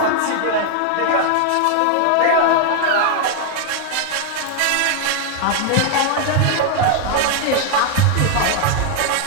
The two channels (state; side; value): different; both; correlation 0.00